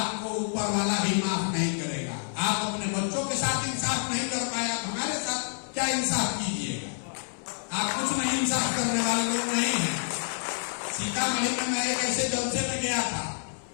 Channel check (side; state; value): right; silent; 59 dB below the other